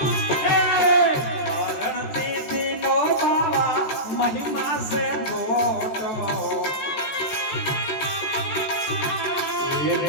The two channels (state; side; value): late; right; 14 ms